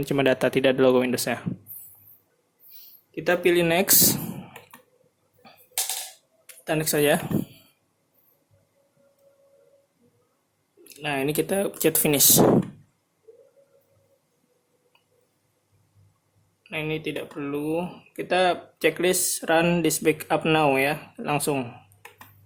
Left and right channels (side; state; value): both; identical; correlation 1.00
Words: ini cuma data, tidak ada logo Windows-nya. Kita pilih next. Kita next saja. Nah, ini kita pencet finish. Nah, ini tidak perlu. Kita checklist run this backup now ya, langsung.